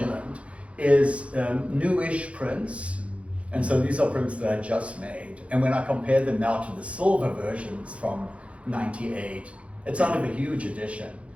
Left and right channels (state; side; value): late; left; 0.062 ms